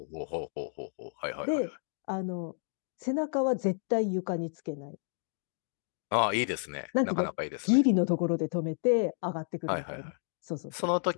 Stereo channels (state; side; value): silent; right; digital silence